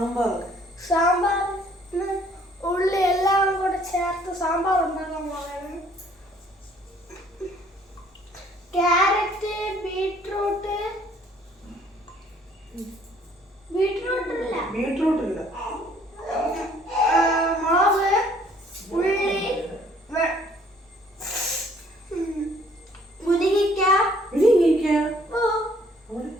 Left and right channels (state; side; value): normal; both; correlation 0.60